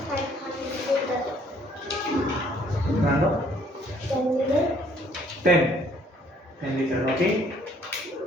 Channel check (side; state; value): both; normal; correlation 0.62